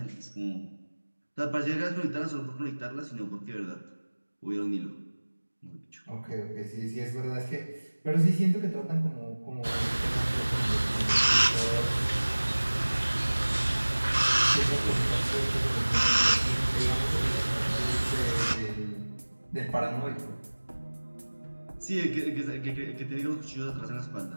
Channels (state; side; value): inverted; both; correlation -1.00